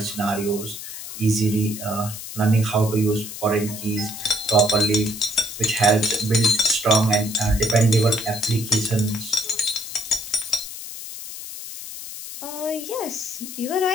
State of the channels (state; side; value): noise; left; hiss, 10 dB below the sound